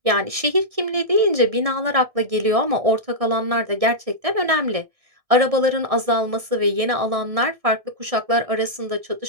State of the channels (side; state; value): left; late; 1.6 ms